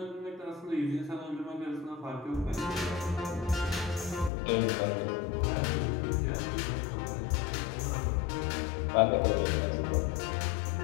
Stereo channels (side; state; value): right; drops out; at 4.3 s